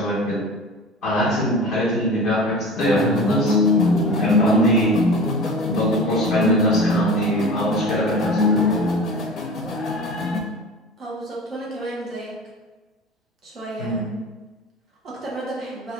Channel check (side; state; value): both; normal; correlation 0.35